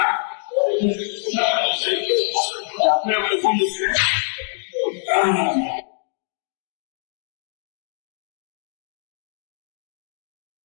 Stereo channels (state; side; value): silent; right; digital silence